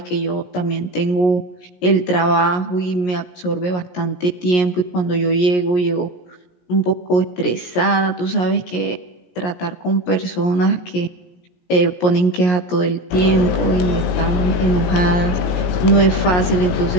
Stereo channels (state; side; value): late; right; 17 ms